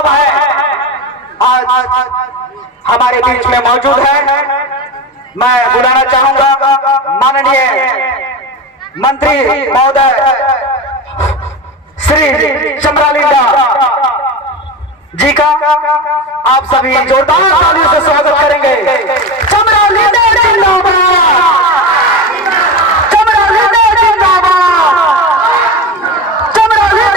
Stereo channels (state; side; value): normal; both; correlation 0.24